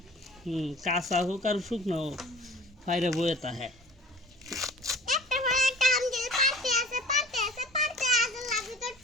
কাঁচা হোক আর শুকনো হোক ফাইরে বইতা হ্যাঁ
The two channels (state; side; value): normal; both; correlation 0.44